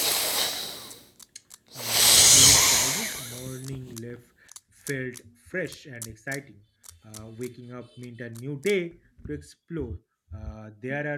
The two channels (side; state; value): both; identical; correlation 1.00